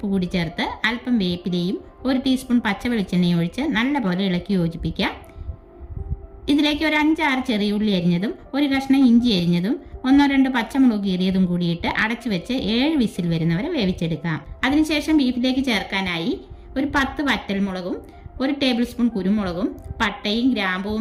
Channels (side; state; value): both; identical; correlation 1.00